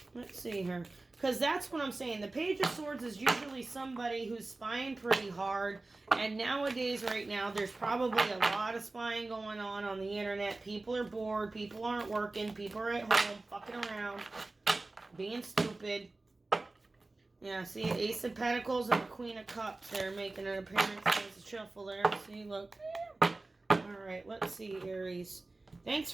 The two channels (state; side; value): quieter; left; 3.2 dB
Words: Let's see here. Because that's what I'm saying. The Page of Swords is usually somebody who's spying pretty hard. And nowadays, right now, there's probably a lot of spying going on the internet. People are bored. People aren't working. People are at home fucking around, being stupid. Yeah, see, Ace of Pentacles and the Queen of Cups there making an appearance. There's a shuffle there. See, look. Alright, let's see, Aries. Thanks